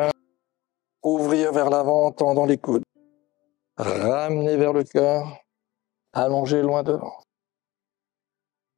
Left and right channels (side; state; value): right; quieter; 19.2 dB